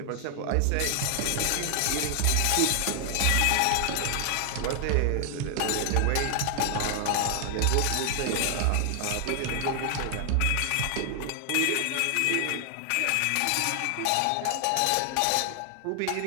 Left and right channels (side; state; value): both; different; correlation 0.00